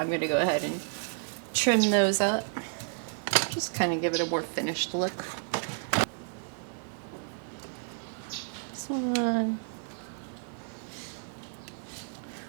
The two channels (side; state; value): left; silent; digital silence